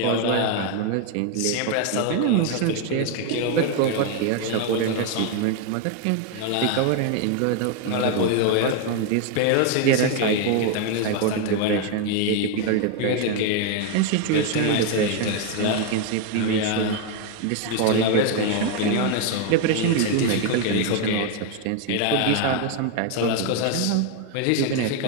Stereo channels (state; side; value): different; both; correlation 0.01